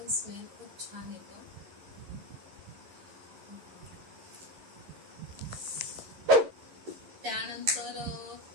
स्मेल खूप छान येतो. त्यानंतर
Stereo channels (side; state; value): left; late; 11 ms